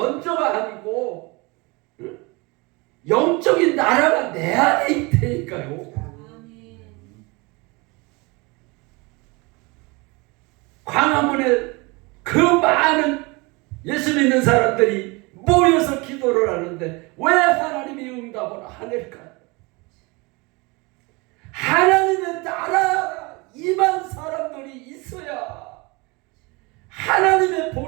아니고 영적인 나라가 내 안에 있다니까요. 아멘. 광화문에 그 많은 예수 믿는 사람들이 모여서 기도를 하는데 왜 하나님이 응답을 안 할까요? 하나님의 나라가 임한 사람들이 있어야 하나님의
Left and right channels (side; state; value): left; quieter; 26.6 dB